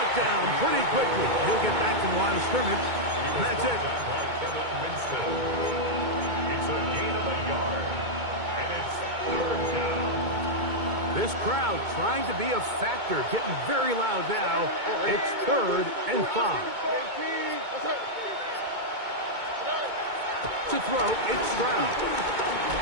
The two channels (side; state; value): left; late; 2.2 ms